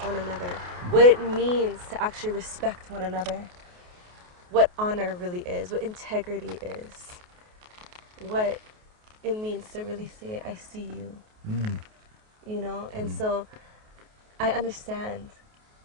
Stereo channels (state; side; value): late; left; 28 ms